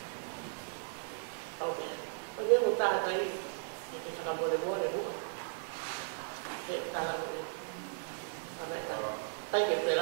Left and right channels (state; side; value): silent; left; digital silence